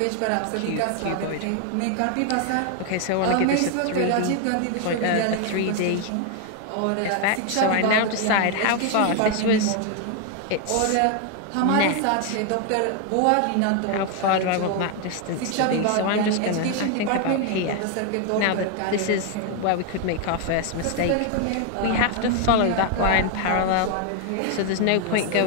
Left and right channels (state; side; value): different; both; correlation 0.01